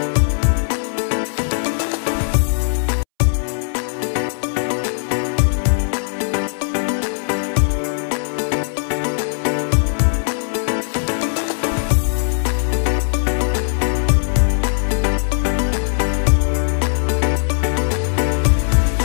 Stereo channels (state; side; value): silent; right; 67 dB below the other